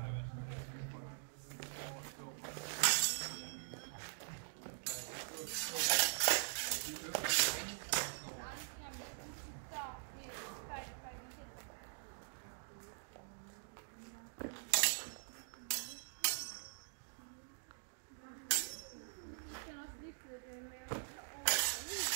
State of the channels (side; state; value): left; silent; digital silence